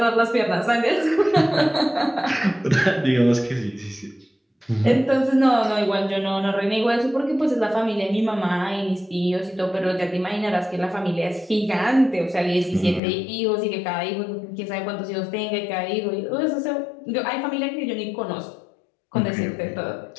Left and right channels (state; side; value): drops out; right; at 13.0 s